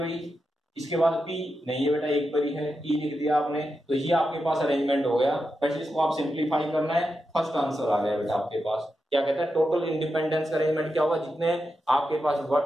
इसके बाद P नहीं है बेटा, एक बारी है, E लिख दिया आपने, तो ये आपके पास अरेंजमेंट हो गया। बस इसको आप सिंपलीफाई करना है, फर्स्ट आंसर आ गया बेटा आपके पास। क्या कहता है टोटल इंडिपेंडेंस का अरेंजमेंट क्या होगा, जितने आपके पास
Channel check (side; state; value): both; normal; correlation 0.88